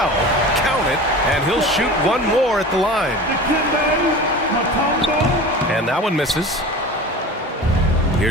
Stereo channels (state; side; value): normal; both; correlation 0.35